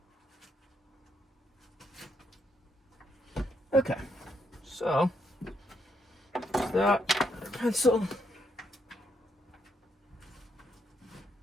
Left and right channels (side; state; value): both; normal; correlation 0.76